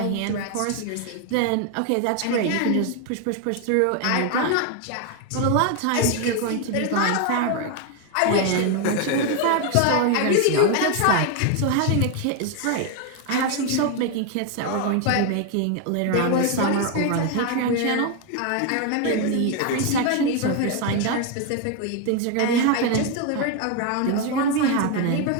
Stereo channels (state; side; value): different; both; correlation 0.01